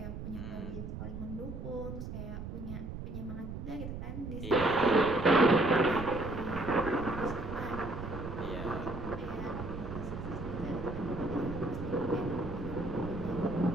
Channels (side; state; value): right; noise; rumble, 7 dB below the sound